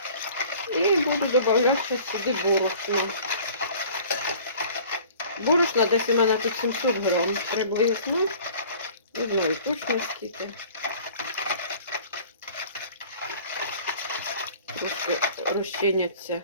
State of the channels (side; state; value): both; inverted; correlation -0.47